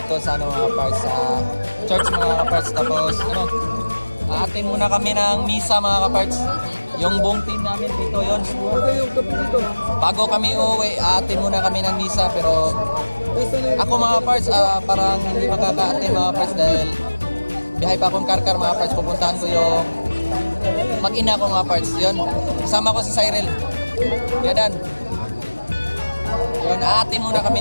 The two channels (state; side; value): inverted; both; correlation -1.00